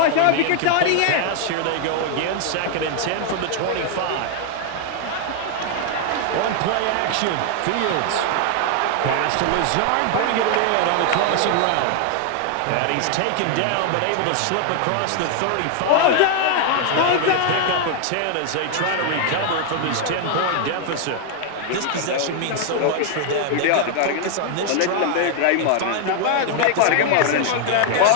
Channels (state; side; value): different; both; correlation 0.00